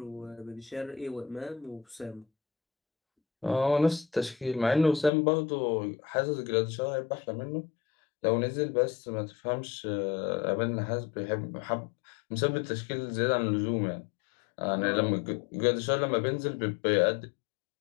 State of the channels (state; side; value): drops out; right; at 5.1 s